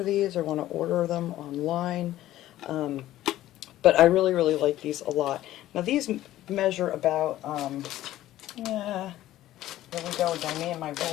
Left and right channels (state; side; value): quieter; right; 14.3 dB